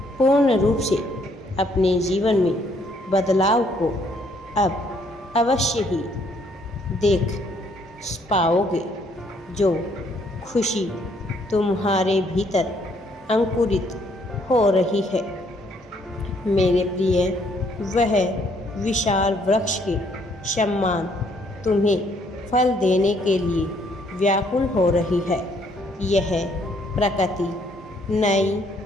पूर्ण रूप से अपने जीवन में बदलाव को अब अवश्य ही देख पाओगे। जो खुशी तुम्हारे भीतर अंकुरित हो रही है, मेरे प्रिय, वह विशाल वृक्ष के समान तुम्हें फल देने के लिए व्याकुल हो रही है। यह प्रकृति नई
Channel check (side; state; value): both; normal; correlation 0.67